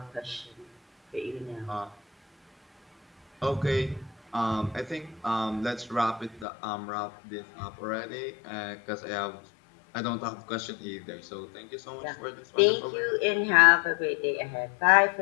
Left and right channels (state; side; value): drops out; right; at 6.5 s